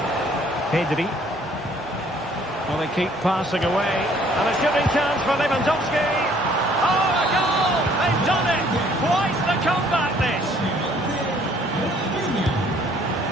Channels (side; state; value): both; normal; correlation 0.60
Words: Pedri. Well, they keep passing away. And a shooting chance for Lewandowski. Oh, a goal! They've done it! Quite the comeback, this!